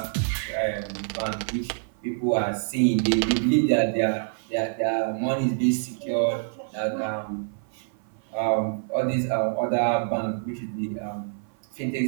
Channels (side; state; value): left; silent; 55 dB below the other